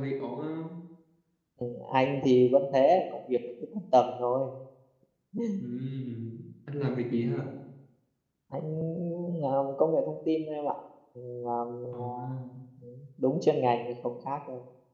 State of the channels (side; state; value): both; identical; correlation 1.00